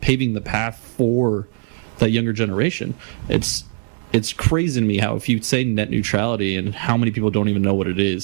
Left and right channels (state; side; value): silent; left; 61 dB below the other